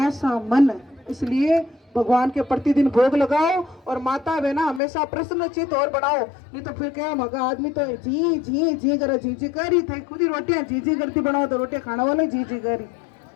मन। इसलिए भगवान के प्रतिदिन भोग लगाओ और माता बहना हमेशा प्रसन्नचित और बनाओ। नहीं तो फिर क्या मगा आदमी तो जी जी जी करे, जी जी करी थे, खुद ही रोटियां जी जी करती बनाओ तो रोटियां खाने वाले जी जी करी,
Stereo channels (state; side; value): drops out; right; at 4.8 s